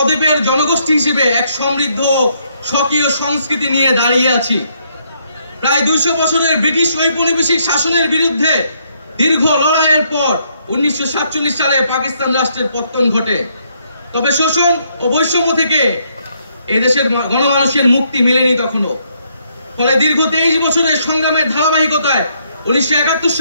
জনগোষ্ঠী হিসেবে এক সমৃদ্ধ স্বকীয় সংস্কৃতি নিয়ে দাঁড়িয়ে আছি। প্রায় 200 বছরের ব্রিটিশ ঔপনিবেশিক শাসনের বিরুদ্ধে দীর্ঘ লড়াইয়ের পর 1947 সালে পাকিস্তান রাষ্ট্রের পতন ঘটে। তবে শোষণ ও বৈষম্য থেকে এই দেশের গণমানুষের মুক্তি মেলেনি তখনও। ফলে দীর্ঘ 23 বছরের সংগ্রামের ধারাবাহিকতায় 1971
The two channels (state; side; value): inverted; both; correlation -0.73